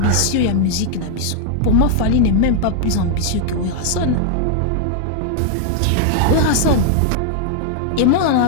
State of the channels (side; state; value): both; different; correlation 0.00